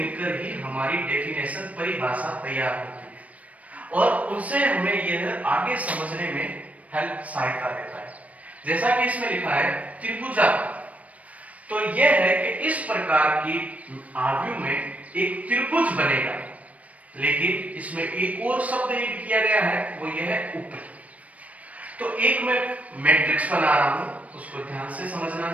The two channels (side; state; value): left; late; 0.068 ms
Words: ही हमारी डेफिनेशन, परिभाषा तैयार होती है और उनसे हमें यह आगे समझने में हेल्प, सहायता देता है। जैसा कि इसमें लिखा है त्रिभुजाकार, तो यह है कि इस प्रकार की आव्यूह में एक त्रिभुज बनेगा, लेकिन इसमें एक और शब्द ऐड किया गया है, वो यह है ऊपरी। तो एक मैं मैट्रिक्स बना रहा हूं, उसको ध्यान से समझना